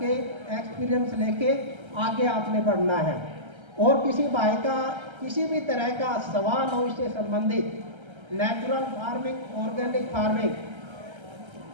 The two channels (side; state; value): left; late; 1.3 ms